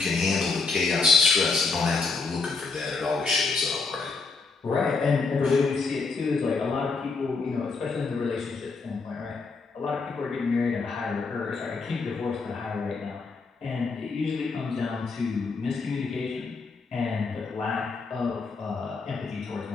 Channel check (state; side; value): quieter; right; 4.2 dB